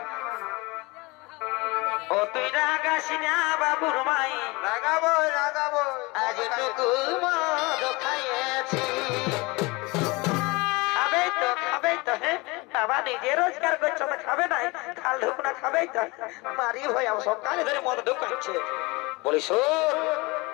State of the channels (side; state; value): right; quieter; 24.8 dB